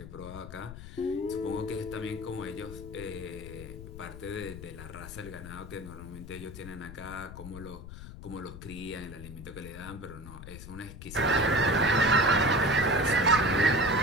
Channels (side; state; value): left; noise; rumble, 12 dB below the sound